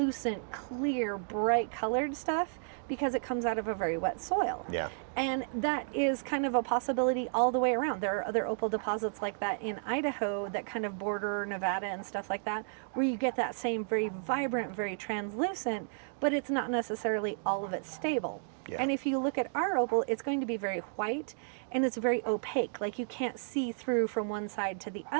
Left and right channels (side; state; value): left; silent; digital silence